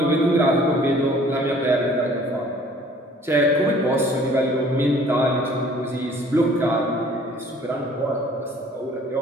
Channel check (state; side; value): normal; both; correlation 0.54